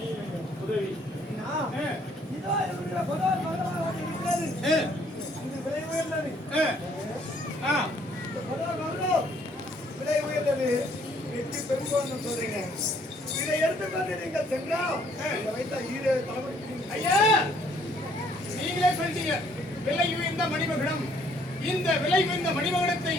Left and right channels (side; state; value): both; normal; correlation 0.64